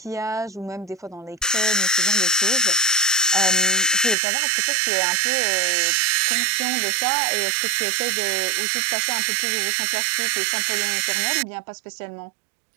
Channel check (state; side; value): drops out; left; at 4.2 s